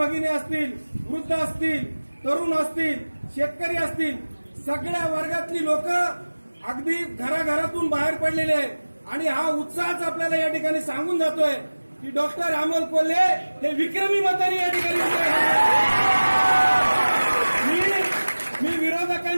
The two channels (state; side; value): inverted; both; correlation -1.00